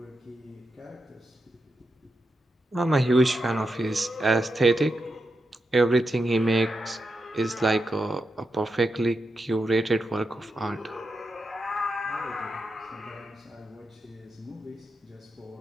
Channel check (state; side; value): normal; both; correlation 0.87